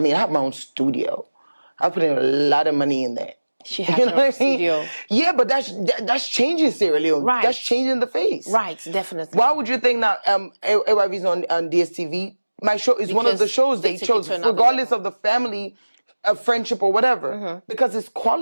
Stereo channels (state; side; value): inverted; both; correlation -1.00